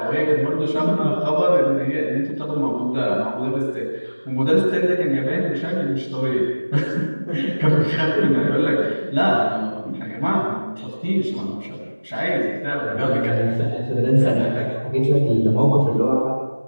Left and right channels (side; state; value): both; inverted; correlation -1.00